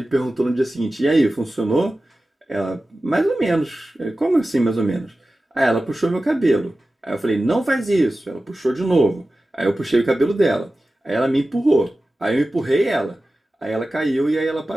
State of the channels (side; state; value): both; normal; correlation 0.95